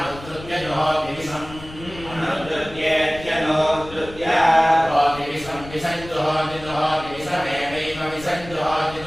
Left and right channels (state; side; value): noise; left; rumble, 16 dB below the sound